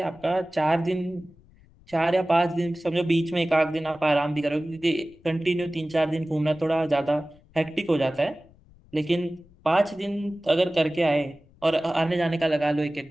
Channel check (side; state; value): left; noise; rumble, 27 dB below the sound